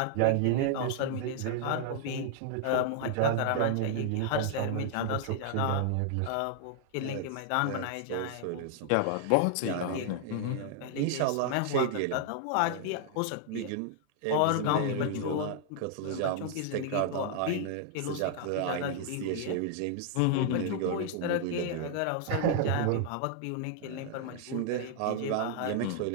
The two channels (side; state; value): both; different; correlation 0.00